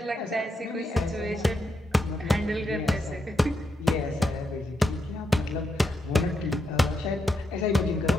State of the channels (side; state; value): both; normal; correlation 0.82